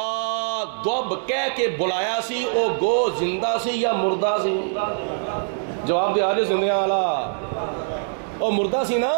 دب کہہ کے بلایا سی او گو زندہ سی یا مردہ سی؟ جواب دے آجے زندیاں والا او مردہ سی نا.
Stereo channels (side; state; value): left; silent; digital silence